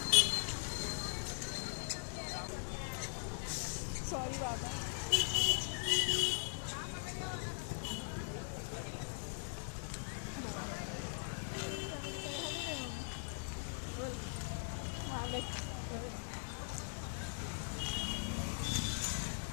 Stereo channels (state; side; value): silent; right; 51 dB below the other